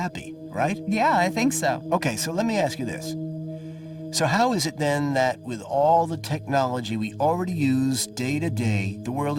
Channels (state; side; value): identical; both; correlation 1.00